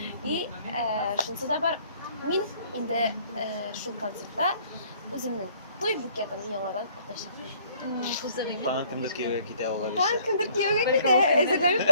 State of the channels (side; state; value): both; inverted; correlation -0.60